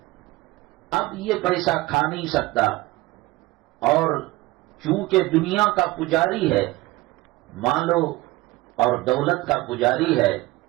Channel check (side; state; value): left; quieter; 19.7 dB